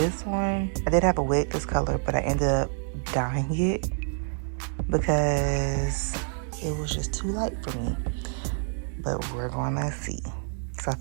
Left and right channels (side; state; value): left; silent; 60 dB below the other